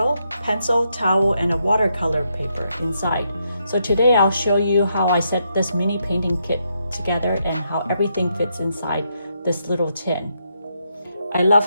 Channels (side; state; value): both; inverted; correlation -0.79